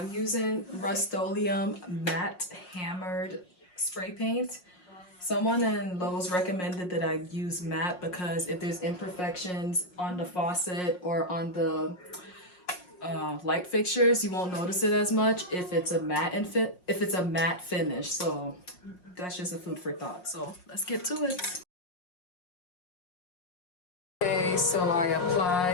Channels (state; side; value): late; right; 5.5 ms